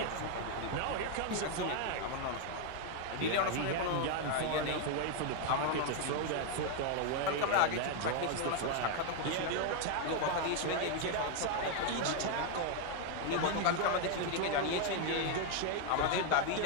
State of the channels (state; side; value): different; both; correlation 0.01